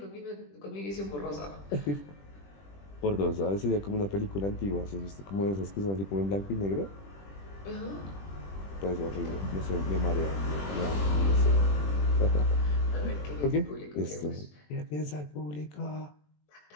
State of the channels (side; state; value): right; late; 20 ms